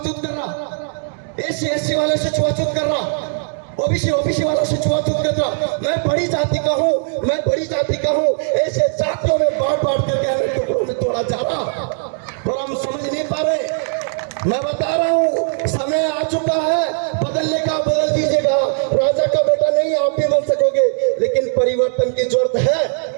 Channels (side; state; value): left; silent; digital silence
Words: कर रहा, एससी वाले से छुआछूत कर रहा, ओबीसी वाला से छुआछूत कर रहा। मैं बड़ी जाति का हूँ, मैं बड़ी जाति का हूँ, ऐसे जातियों में बांट करके हमें टुकड़ों में तोड़ा जा रहा, पर हम समझ नहीं पा रहे। मैं बता रहा हूँ समय आ चुका है, बदलने का बदल दीजिएगा। राजा का बेटा नहीं आप भी बन सकोगे, लेकिन परिवर्तन की जरूरत है,